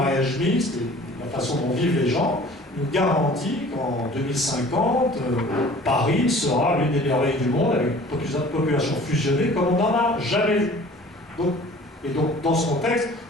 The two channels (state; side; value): normal; both; correlation 0.48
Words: mixte et la façon dont vivent les gens nous garantit qu'en 2050, Paris sera l'une des merveilles du monde avec une population fusionnée comme on n'en a jamais vu. Donc, dans ce contexte,